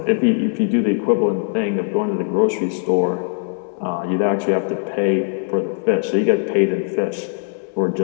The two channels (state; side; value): silent; right; digital silence